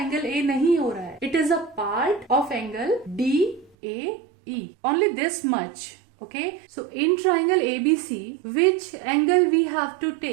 A नहीं हो रहा है. It is a part of angle DAE. Only this much. Okay, so in triangle ABC, which angle we have to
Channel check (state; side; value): drops out; left; at 3.7 s